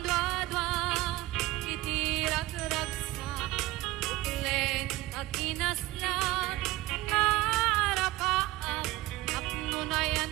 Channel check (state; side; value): quieter; left; 18.0 dB